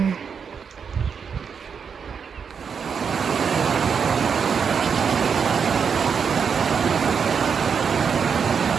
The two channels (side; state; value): left; quieter; 6.4 dB